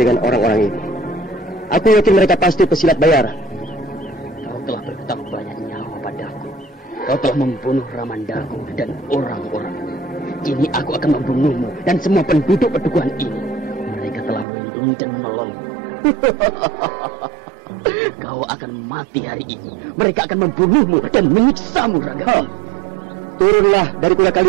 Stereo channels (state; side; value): drops out; left; at 14.5 s